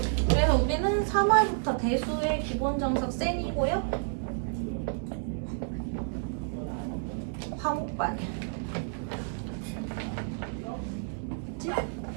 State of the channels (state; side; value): silent; left; 58 dB below the other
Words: 그래서 우리는 3월부터 대수의 기본 정석 센이고요. 화목반이야. 그치?